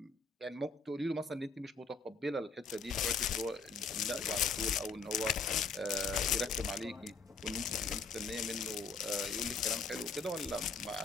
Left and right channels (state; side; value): quieter; right; 4.3 dB